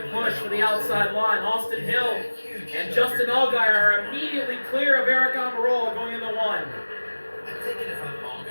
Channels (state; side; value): inverted; both; correlation -1.00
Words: push for the outside line. Austin Hill and Justin Allgaier are immediately clear of Aric Almirola going into 1. I'm thinking if I'm